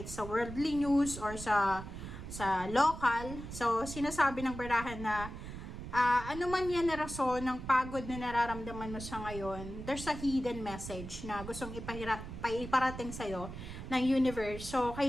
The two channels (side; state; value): right; noise; rumble, 10 dB below the sound